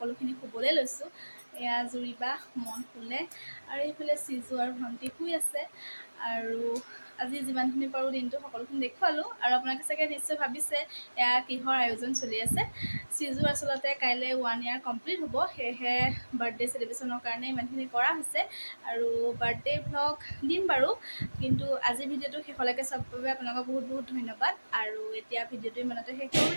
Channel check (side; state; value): both; inverted; correlation -1.00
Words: শুবলৈ লৈছোঁ। এয়া জুৰিবা মন শুলে আৰু এইফালে চিজু আৰু ভণ্টি শুই আছে। আৰু আজি যিমানখিনি পাৰোঁ দিনটো সকলোখিনি দেখুৱালোঁ। আৰু আপোনালোকে চাগে নিশ্চয় ভাবিছে এয়া কিহৰ আয়োজন চলি আছে। চিজু আচলতে কাইলৈ 1 year কমপ্লিট হ'ব, সেয়েহে বাৰ্থডে চেলিব্ৰেশ্যনৰ কাৰণে ইমানখিনি কৰা হৈছে। আৰু বাৰ্থডে ভ্লগ দিম বাৰু, কিন্তু আজি ভিডিঅ'টো শেষলৈকে চোৱাৰ বাবে আপোনালোকক বহুত ধন্যবাদ। আৰু এতিয়া ভিডিঅ'টো ইমানতে শেষ কৰিবলৈ